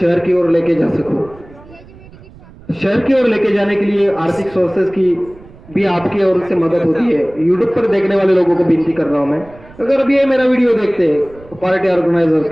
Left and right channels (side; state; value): right; noise; rumble, 22 dB below the sound